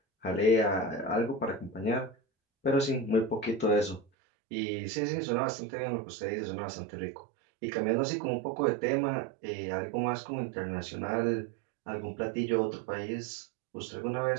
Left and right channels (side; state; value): left; drops out; at 4.0 s